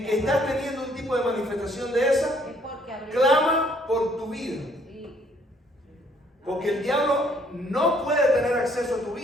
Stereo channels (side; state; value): both; normal; correlation 0.64